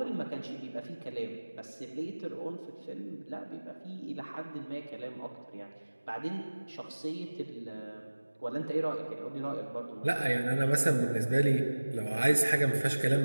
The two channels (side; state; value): both; inverted; correlation -1.00